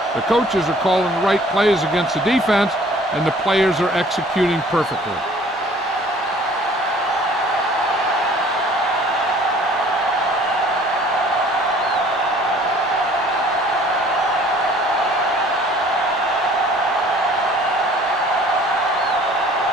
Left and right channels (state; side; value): normal; both; correlation 0.53